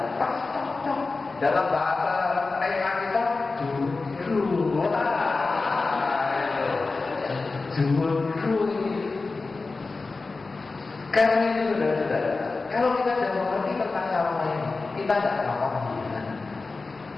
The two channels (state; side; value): quieter; right; 3.8 dB